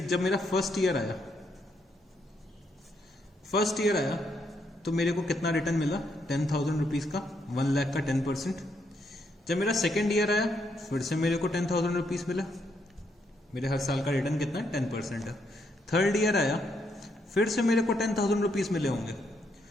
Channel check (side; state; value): both; normal; correlation 0.76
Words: जब मेरा फर्स्ट ईयर आया तो मेरे को कितना रिटर्न मिला, 10,000 रुपीज का, 1 लाख का 10%। जब मेरा सेकेंड ईयर आया फिर से मेरे को 10,000 रुपीज मिला, मेरे हर साल का रिटर्न कितना है, 10% है। थर्ड ईयर आया फिर से मेरे को 10,000 रुपीज मिले होंगे,